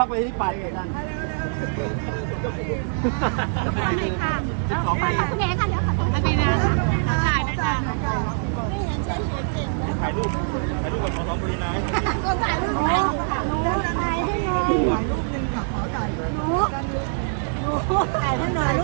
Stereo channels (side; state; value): left; silent; 58 dB below the other